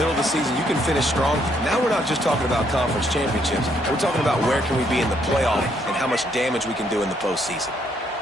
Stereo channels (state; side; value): normal; both; correlation 0.71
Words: of the season, you can finish strong. Now we're not just talking about conference championships. We're talking about where can we be in the playoff and how much damage we can do in the postseason.